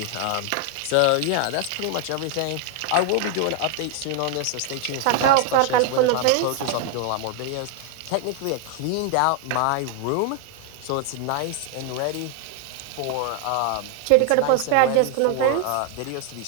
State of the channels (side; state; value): both; different; correlation 0.00